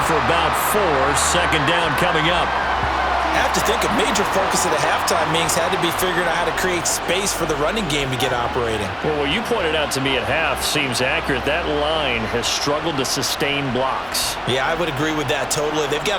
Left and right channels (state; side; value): identical; both; correlation 1.00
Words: for about 4. Second down coming up. I have to think a major focus of the halftime meetings had to be figuring out how to create space for the running game to get operating. Well, what you pointed out to me at half seems accurate. That line has struggled to sustain blocks. Yeah, I would agree with that totally. They've got